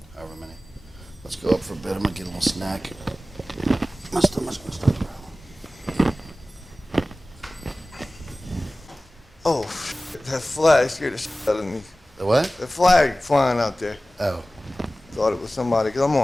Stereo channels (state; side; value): normal; both; correlation 0.97